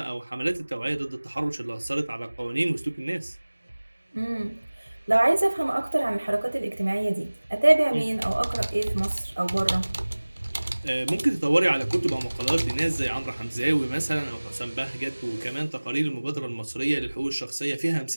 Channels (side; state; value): both; inverted; correlation -1.00